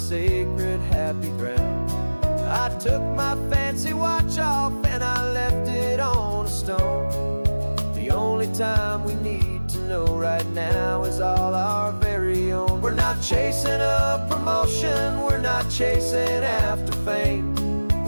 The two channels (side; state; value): both; inverted; correlation -1.00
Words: happy ground. I took my fancy watch off and I left it on a stone. The only time we need to know right now is all our very own. We're not chasing a promotion, we're not chasing after fame,